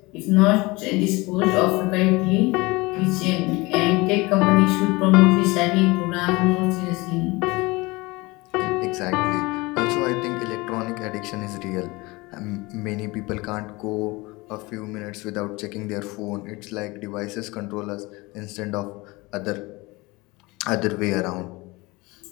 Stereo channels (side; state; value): right; quieter; 23.2 dB